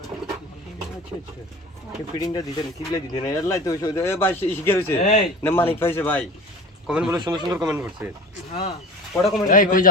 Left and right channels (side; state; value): both; normal; correlation 0.35